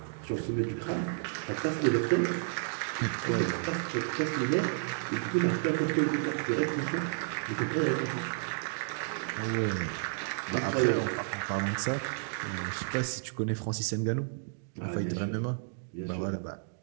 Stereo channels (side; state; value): left; silent; digital silence